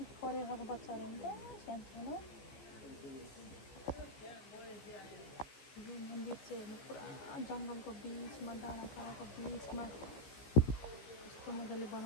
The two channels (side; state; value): right; late; 14 ms